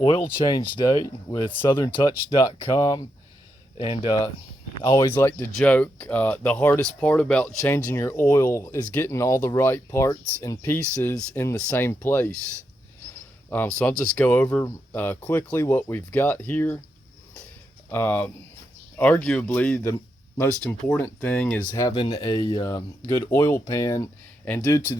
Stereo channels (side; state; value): both; normal; correlation 0.83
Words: change day with SouthernTouch.com, and I always like to joke, the hardest part about changing your oil is getting all the right parts and pieces in the same place. So I'll just go over quickly what we've got here. Arguably, the most important thing is having a good oil pan, and due to